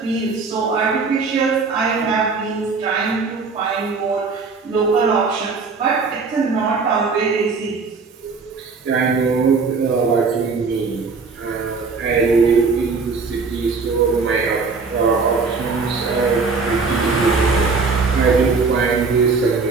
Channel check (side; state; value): left; quieter; 4.5 dB